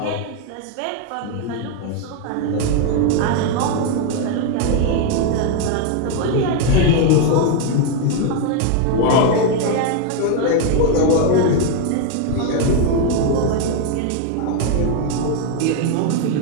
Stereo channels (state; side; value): different; both; correlation 0.01